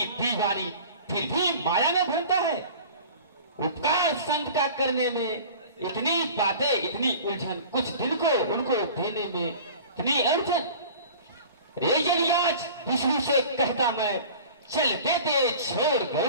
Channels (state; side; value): inverted; both; correlation -0.41